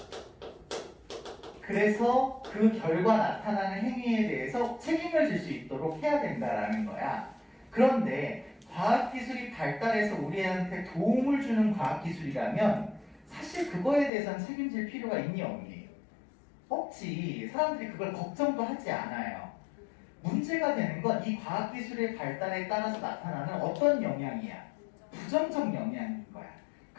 그래서 그 결과 나타나는 행위에 대해서 책임을 질 수 있도록 해야 된다라는 거야. 그런데 과학기술이 발달해서 우리한테 도움을 주는 과학기술이라면 사실 그거에 대해서는 책임질 필요가 있니 없니? 없지. 사람들이 그걸 걱정도 하지 않아요. 문제가 되는 건 이 과학기술의 발달에 따라서 나타나는 어떤 영향이야? 부정적 영향인 거야.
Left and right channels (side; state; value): right; drops out; at 14.1 s